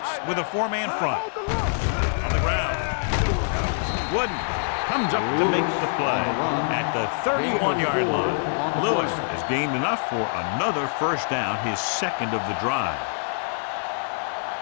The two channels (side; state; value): right; silent; digital silence